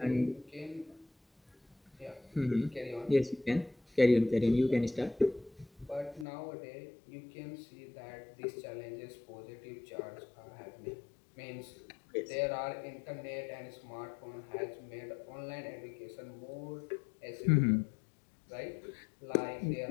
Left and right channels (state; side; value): drops out; right; at 6.2 s